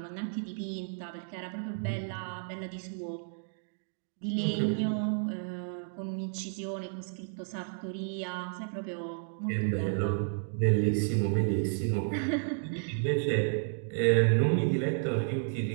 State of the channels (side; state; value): left; silent; digital silence